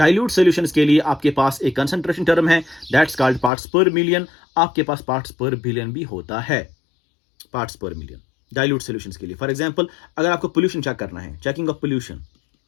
solutions के लिए आपके पास एक concentration term है, that's called parts per million. आपके पास parts per billion भी होता है, parts per million dilute solutions के लिए. फॉर एग्जांपल, अगर आपको पोल्यूशन चेक करना है, checking of pollution,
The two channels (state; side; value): drops out; right; at 3.5 s